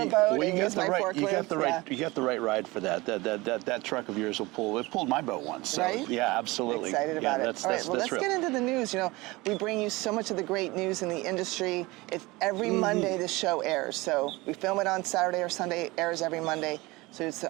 a boat and use my forklift. You got the right ride for that. That truck of yours will pull. It pulled my boat once. So, right? Yeah, absolutely. Excited about it. All right, well, let's real. get into the news. You know, we bring you so much of the great news in the industry. It's every Monday the show airs. So we film it on Saturday or Sunday. Airs every Monday. So it's.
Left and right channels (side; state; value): left; quieter; 22.1 dB